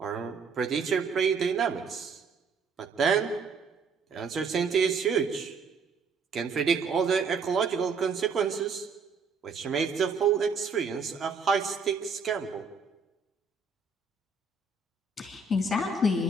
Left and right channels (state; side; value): quieter; left; 4.5 dB